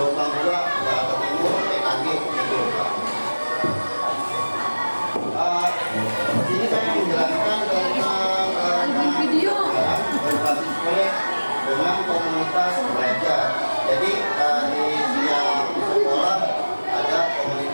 2 Jakarta Timur PKG Jakarta. Ini saya menjelaskan tentang berbasis proyek dengan komunitas belajar. Jadi di setiap sekolah ada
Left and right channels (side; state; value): both; inverted; correlation -1.00